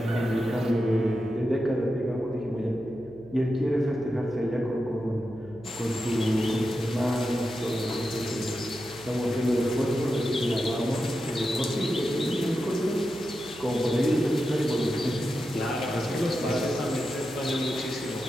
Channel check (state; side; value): noise; right; hum, 20 dB below the sound